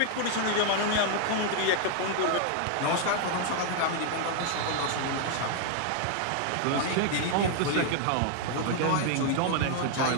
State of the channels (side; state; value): both; different; correlation 0.00